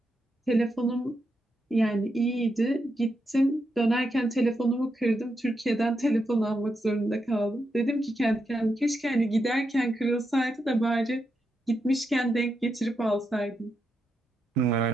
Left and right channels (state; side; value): normal; both; correlation 0.84